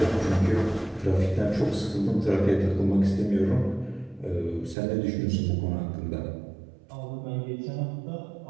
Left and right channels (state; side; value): drops out; left; at 4.8 s